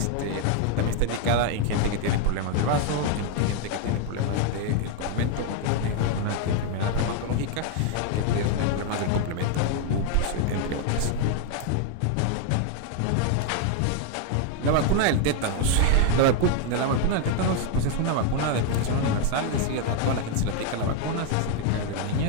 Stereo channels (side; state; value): both; different; correlation 0.00